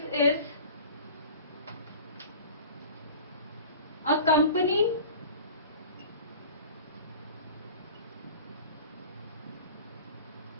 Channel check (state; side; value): inverted; both; correlation -0.40